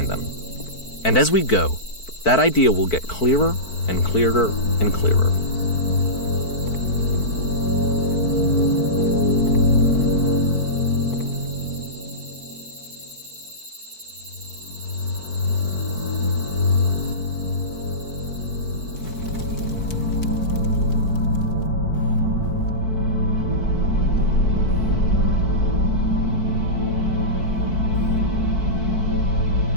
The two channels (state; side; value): late; right; 4.5 ms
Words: them. And as we go, that idea will get clearer and clearer and clearer.